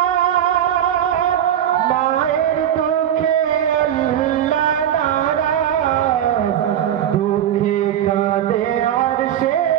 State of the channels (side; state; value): left; quieter; 10.5 dB